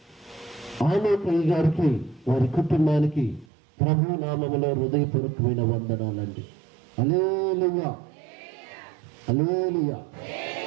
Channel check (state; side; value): drops out; left; at 3.5 s